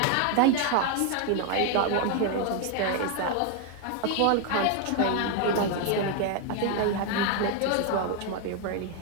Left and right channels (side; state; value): both; different; correlation 0.01